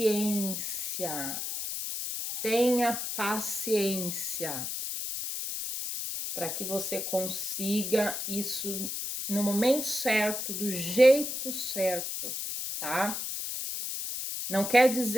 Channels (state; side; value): noise; left; hiss, 4 dB below the sound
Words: Tenha paciência para que você consiga isso no momento certo, do jeito certo, tá? Não quer